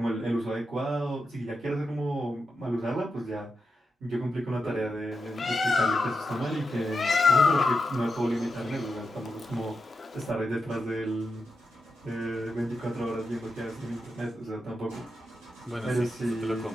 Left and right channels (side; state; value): both; normal; correlation 0.87